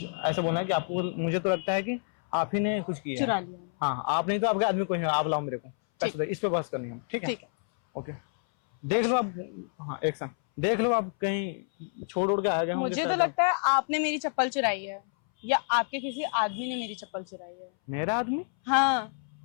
ऐसा बोलना है कि आपको, मुझे तो लगता है कि आप ही ने कुछ किया चुरा है। लिया। हाँ, आप नहीं तो आपके आदमी कोई है। आप लाओ मेरे को पैसे दे। इस पे बहस करनी है, ठीक है? ठीक है। ओके, देख लो आप। हाँ, एक्शन देख लो आप। कहीं छोड़ उड़ के आ गए होंगे मुझे तो शायद लगता है आपने मेरी चप्पल चुराई है, या आपके किसी आदमी ने मेरी चप्पल चुराई है। मेरा आदमी? हाँ,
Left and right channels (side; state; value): right; silent; 59 dB below the other